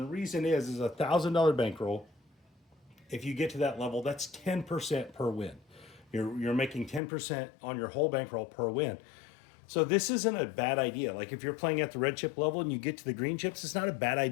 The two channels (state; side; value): drops out; right; at 7.0 s